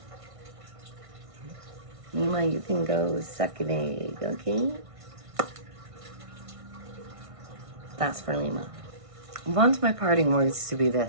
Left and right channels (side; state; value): left; late; 1.6 ms